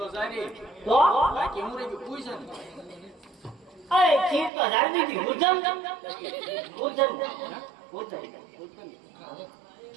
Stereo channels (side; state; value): left; drops out; at 4.5 s